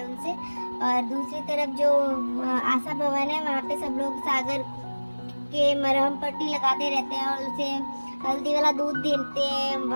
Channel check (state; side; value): inverted; both; correlation -1.00